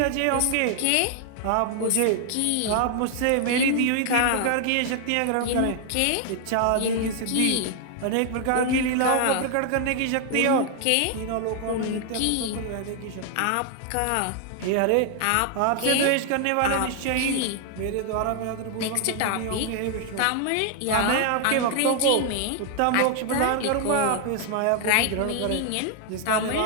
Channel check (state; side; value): different; both; correlation 0.00